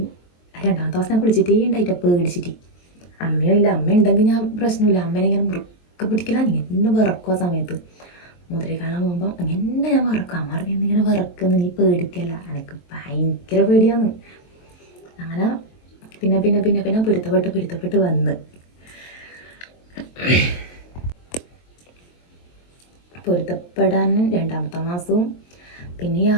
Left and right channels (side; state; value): right; late; 23 ms